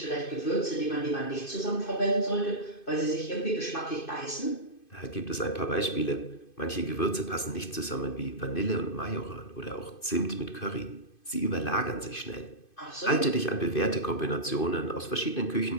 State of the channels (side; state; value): right; late; 2.5 ms